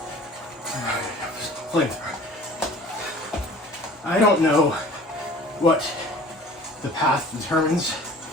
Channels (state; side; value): normal; both; correlation 0.46